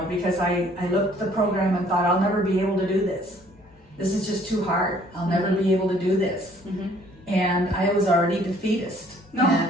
because I looked at the program and thought, I'll never be able to do this. This is just too hard. I'll never be able to do this. And I was already defeatist. No.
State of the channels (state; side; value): normal; both; correlation 0.59